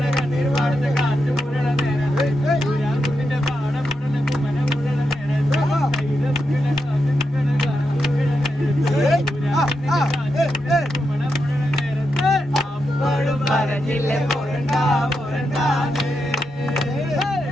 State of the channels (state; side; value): normal; both; correlation 0.85